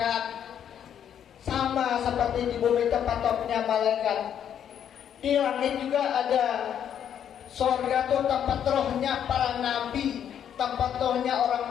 Sama seperti di bumi tempat tawafnya malaikat. Di langit juga ada surga tuh tempat rohnya para nabi, tempat rohnya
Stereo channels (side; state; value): right; quieter; 9.2 dB